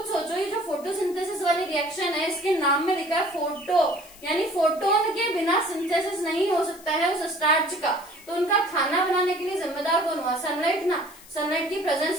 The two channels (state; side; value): noise; left; hiss, 21 dB below the sound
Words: सोचो, ये जो फोटोसिंथेसिस वाली रिएक्शन है, इसके नाम में लिखा है फोटो, यानी फोटोन के बिना सिंथेसिस नहीं हो सकता है उस स्टार्च का। तो उनका खाना बनाने के लिए जिम्मेदार कौन हुआ, सनलाइट ना। सनलाइट की